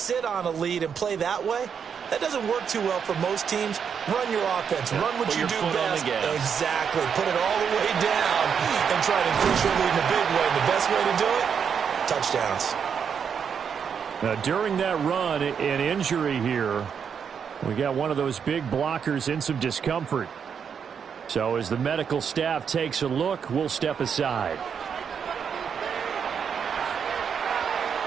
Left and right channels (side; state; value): left; quieter; 7.1 dB